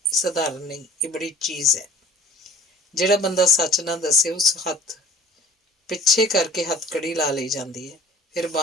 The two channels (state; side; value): normal; both; correlation 0.47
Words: ਸਧਾਰਨ ਨਹੀਂ, ਇਹ ਬੜੀ ਚੀਜ਼ ਹੈ। ਜਿਹੜਾ ਬੰਦਾ ਸੱਚ ਨਾ ਦੱਸੇ ਉਸ ਹੱਥ ਪਿੱਛੇ ਕਰਕੇ ਹੱਥਕੜੀ ਲਾ ਲਈ ਜਾਂਦੀ ਹੈ। ਫਿਰ